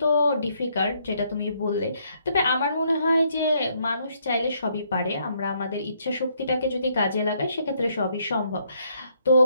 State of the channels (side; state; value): both; inverted; correlation -0.71